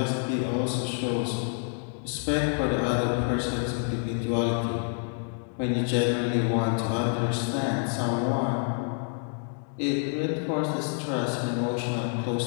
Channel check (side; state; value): right; silent; 55 dB below the other